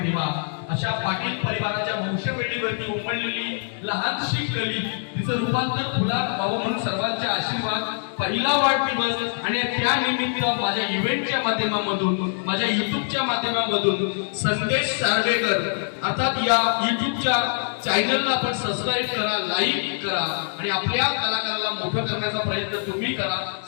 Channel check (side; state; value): right; silent; digital silence